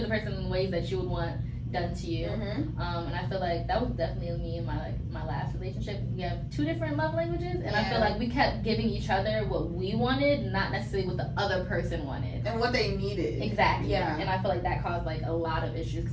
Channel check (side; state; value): both; identical; correlation 1.00